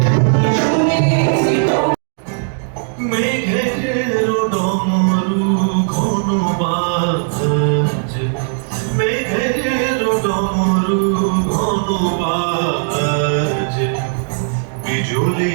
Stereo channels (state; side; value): silent; left; digital silence